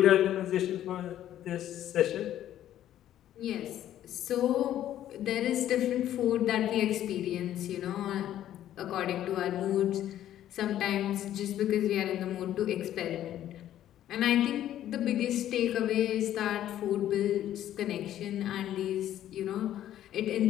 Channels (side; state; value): right; quieter; 12.0 dB